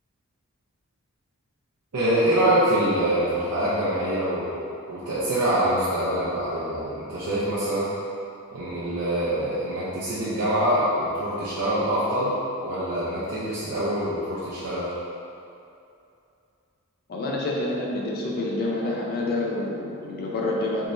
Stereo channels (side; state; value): both; normal; correlation 0.07